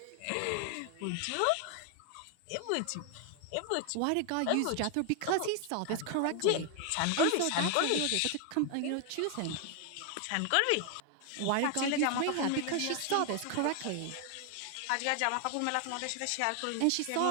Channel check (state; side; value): different; both; correlation 0.00